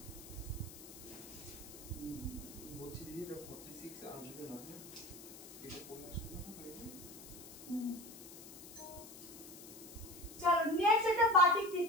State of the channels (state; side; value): noise; left; hiss, 15 dB below the sound